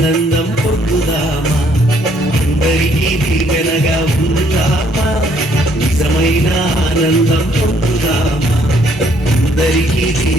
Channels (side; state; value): both; normal; correlation 0.66